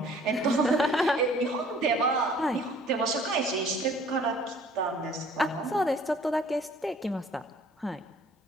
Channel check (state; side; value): normal; both; correlation 0.55